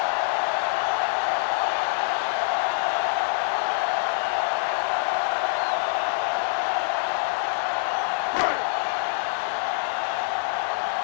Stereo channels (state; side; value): silent; right; 62 dB below the other